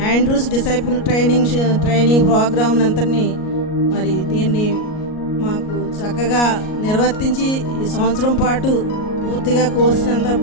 ఆండ్రూస్ డిసైపుల్ ట్రైనింగ్ ప్రోగ్రామ్ అంతని మరి దీన్ని మాకు చక్కగా నిర్వర్తించి ఈ సంవత్సరం పాటు పూర్తిగా కోర్సునంతా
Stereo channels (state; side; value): late; right; 38 ms